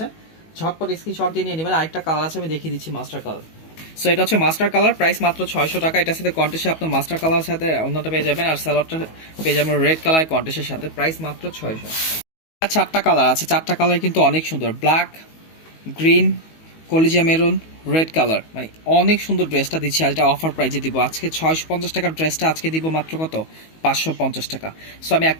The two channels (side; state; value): right; late; 19 ms